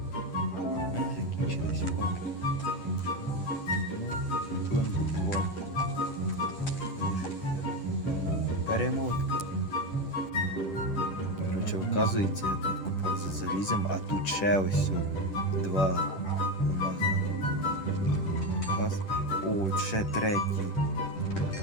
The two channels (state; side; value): late; right; 10 ms